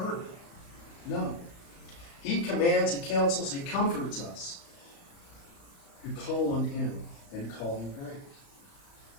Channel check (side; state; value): right; late; 35 ms